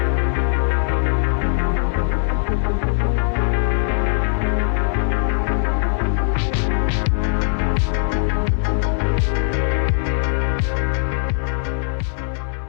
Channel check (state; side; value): silent; right; 62 dB below the other